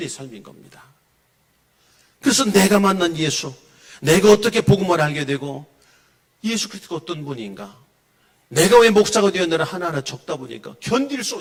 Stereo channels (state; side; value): identical; both; correlation 1.00